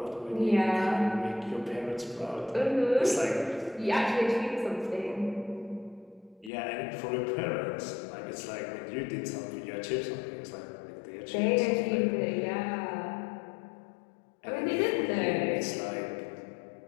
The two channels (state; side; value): drops out; right; at 6.5 s